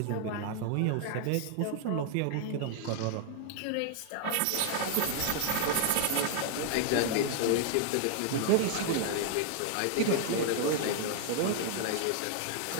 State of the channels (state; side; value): different; both; correlation 0.00